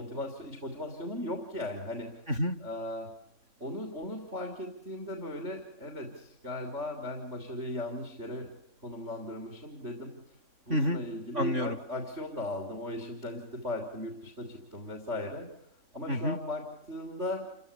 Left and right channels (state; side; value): late; left; 3.6 ms